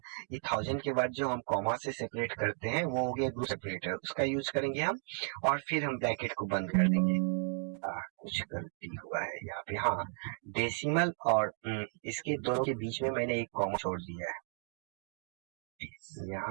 ये 1000 के बाद जो हम कॉमा से सेपरेट करते हैं वो हो गया ग्रुप सेपरेटर, उसका यूज करेंगे हम। और फिर हम ब्रैकेट को बंद कर देंगे। कुछ गलती हुआ है यहाँ पे, हाँ, डेसिमल और इसके दोनों के बीच में मैंने एक कॉमा छोड़ दिया है,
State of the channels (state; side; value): silent; left; 55 dB below the other